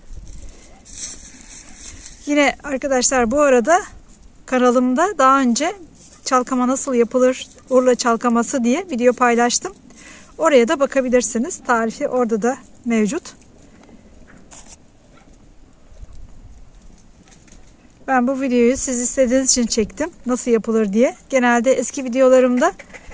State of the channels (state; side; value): identical; both; correlation 1.00